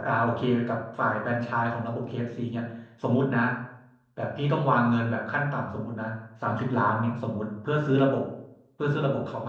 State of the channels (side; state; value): both; identical; correlation 1.00